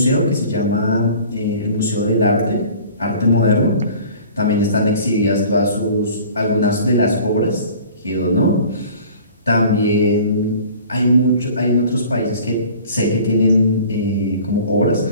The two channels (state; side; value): inverted; both; correlation -0.46